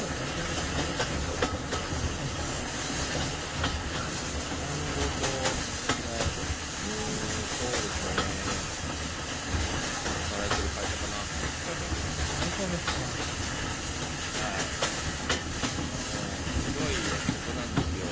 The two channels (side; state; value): both; identical; correlation 1.00